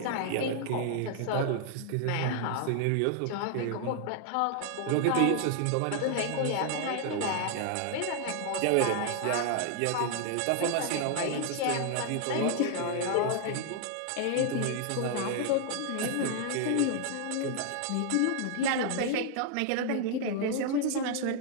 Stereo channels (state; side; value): different; both; correlation 0.00